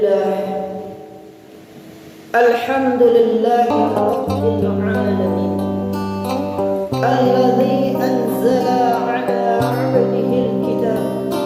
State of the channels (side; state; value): both; identical; correlation 1.00